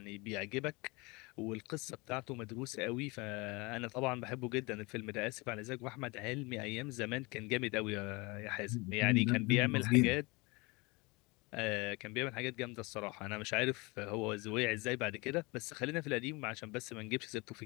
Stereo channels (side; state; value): right; quieter; 25.9 dB